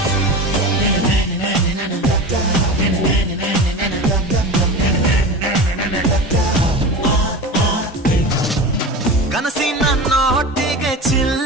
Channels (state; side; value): normal; both; correlation 0.29